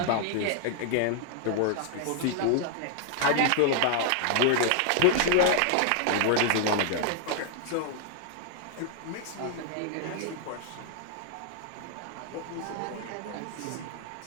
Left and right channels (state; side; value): different; both; correlation 0.00